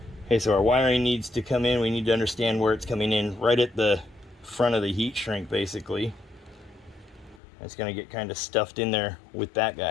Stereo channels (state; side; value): drops out; right; at 7.4 s